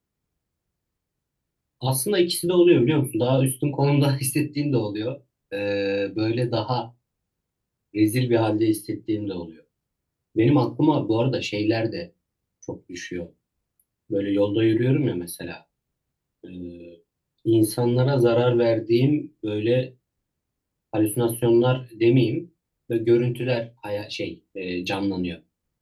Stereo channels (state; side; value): identical; both; correlation 1.00